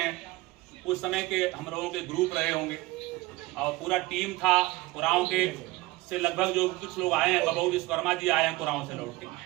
उस समय के हम लोगों के ग्रुप रहे होंगे और पूरा टीम था कुराओं के से। लगभग जो कुछ लोग आए हैं, बबू विश्वकर्मा जी आए हैं कुराओं से लौट के।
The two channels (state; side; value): quieter; left; 20.0 dB